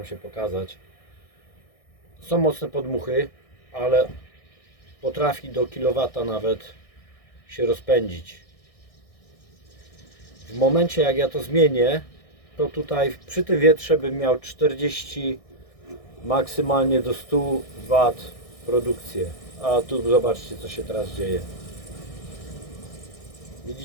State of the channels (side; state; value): right; late; 1.6 ms